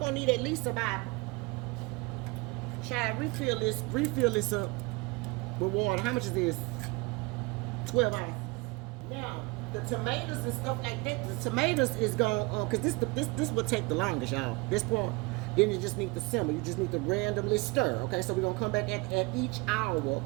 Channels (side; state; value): left; quieter; 26.2 dB